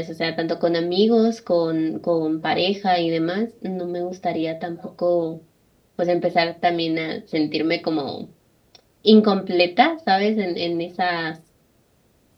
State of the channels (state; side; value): identical; both; correlation 1.00